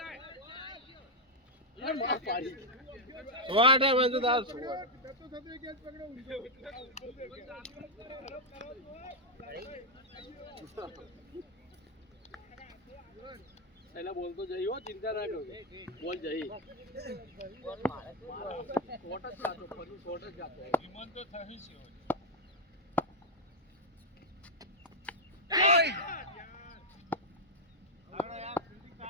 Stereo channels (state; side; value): normal; both; correlation -0.01